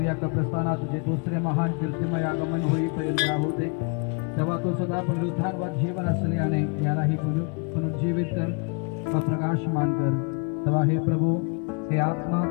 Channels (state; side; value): quieter; right; 34.6 dB